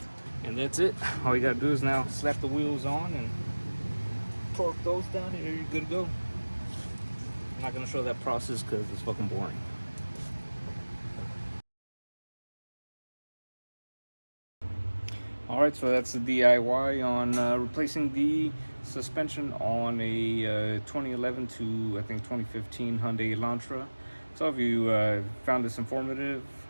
And that's it. All you gotta do is now slap the wheels on and torque those down, and you're good to go. I'm not gonna show that process because it's fucking boring. Alright, so that's the DIY on replacing the suspension on a 2011 to I think 2015 Hyundai Elantra. So if you found this informative,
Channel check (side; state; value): both; inverted; correlation -1.00